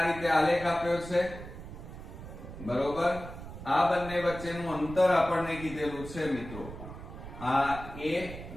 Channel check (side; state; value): right; noise; rumble, 12 dB below the sound